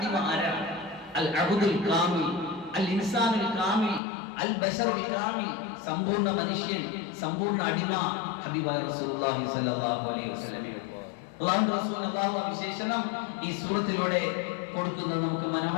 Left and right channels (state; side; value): drops out; right; at 4.0 s